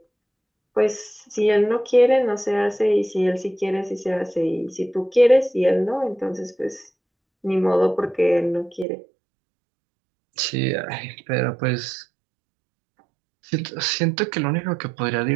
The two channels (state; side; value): drops out; left; at 8.8 s